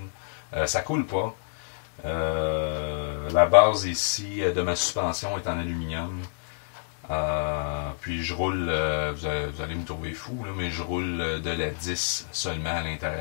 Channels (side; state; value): right; silent; digital silence